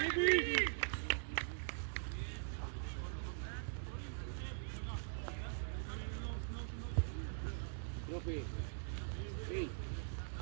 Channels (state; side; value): silent; left; digital silence